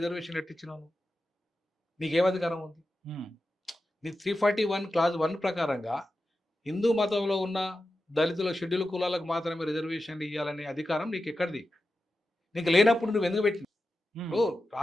ఎట్టిచ్చినావు? నీకేం అధికారం ఉంది? నీ 341 క్లాజ్ 1 ప్రకారంగా హిందూ మతంలో ఉన్న దళితుల షెడ్యూల్ కులాలకు మాత్రమే రిజర్వేషన్లు ఇవ్వాలనే అధికారం నీకు ఎక్కడిది? నీకు లేనప్పుడు నువ్వు ఎందుకు పెట్టిన?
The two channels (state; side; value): normal; both; correlation 0.92